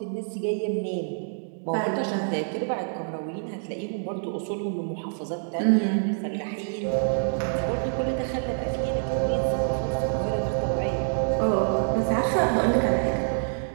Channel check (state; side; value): silent; left; digital silence